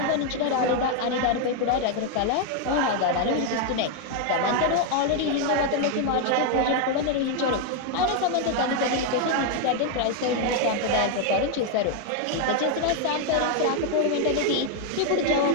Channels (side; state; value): both; different; correlation 0.00